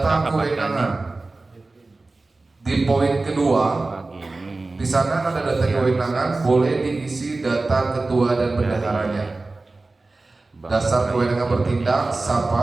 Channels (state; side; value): quieter; left; 3.4 dB